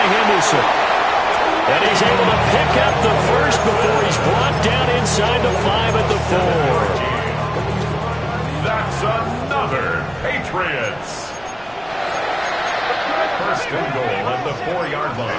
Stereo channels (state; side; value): noise; right; rumble, 25 dB below the sound